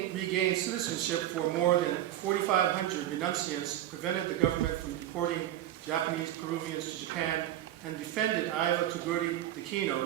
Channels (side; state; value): left; quieter; 12.9 dB